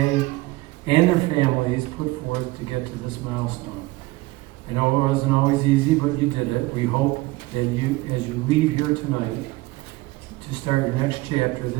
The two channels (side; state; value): left; quieter; 20.4 dB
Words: and their families put forth to get to this milestone. I know it wasn't always easy, but you did it. We hope that you, as you leave here tonight to start your next chapter,